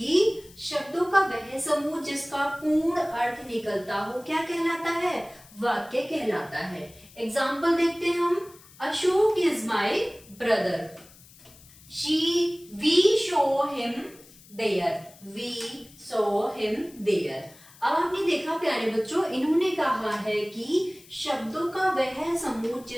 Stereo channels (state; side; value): noise; left; hiss, 23 dB below the sound